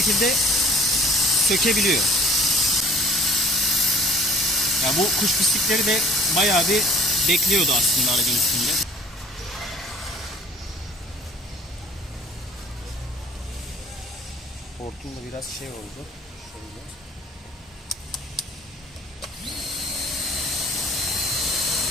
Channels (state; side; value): normal; both; correlation 0.49